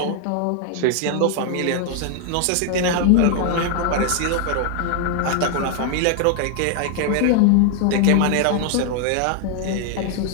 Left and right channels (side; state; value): both; different; correlation 0.00